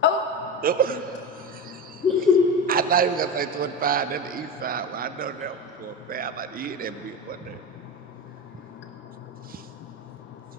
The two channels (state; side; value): normal; both; correlation 0.23